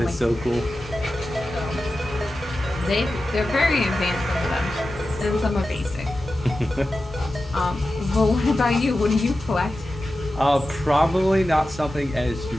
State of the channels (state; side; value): normal; both; correlation 0.93